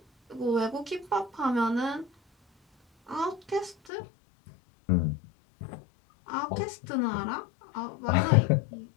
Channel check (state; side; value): drops out; right; at 3.8 s